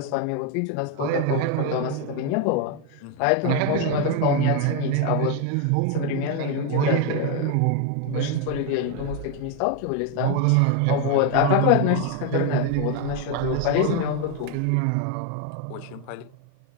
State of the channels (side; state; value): both; different; correlation 0.01